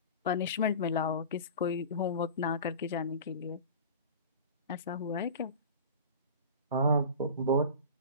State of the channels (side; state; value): both; inverted; correlation -0.34